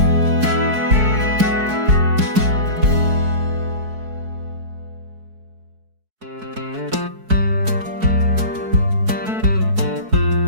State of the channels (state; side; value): late; left; 4.6 ms